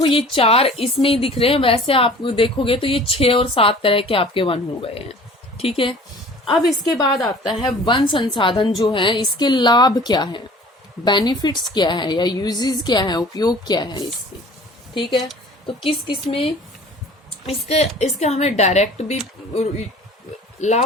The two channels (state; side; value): normal; both; correlation 0.46